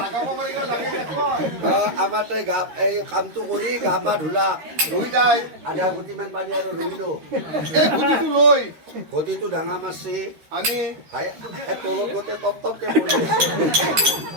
আমাৰ তাই গা এই কামটো কৰি গা পা ধুলা, লৈ তাই আধা গুটিমান পানী আৰু ৰহিলো। এই গুটিটো লৈ ঘটিটো ডাঙা মাছছে, আনি তলত গোটেই টপ টপকে পৰি আছে।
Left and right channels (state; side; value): late; left; 13 ms